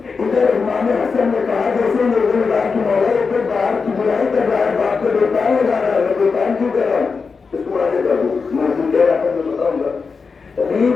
ادھر امام حسن نے کہا جیسے میرے اللہ کی مولا ایک باہر کی برائی کر رہا ہے باپ کو بہتان لگا رہا ہے میں بہتان کیوں کر رہا ہوں اس کو آگے کر دوں میں کہہ رہا تھا میں بتاؤں گا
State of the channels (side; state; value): right; quieter; 5.0 dB